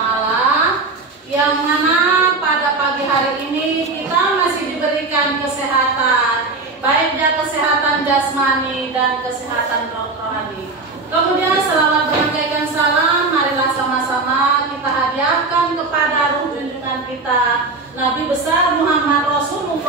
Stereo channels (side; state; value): left; quieter; 3.7 dB